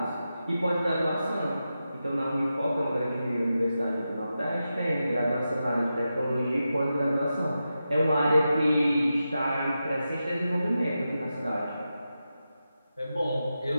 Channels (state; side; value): inverted; both; correlation -0.90